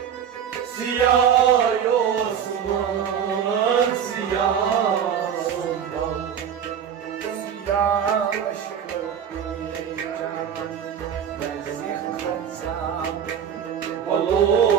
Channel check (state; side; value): quieter; left; 8.4 dB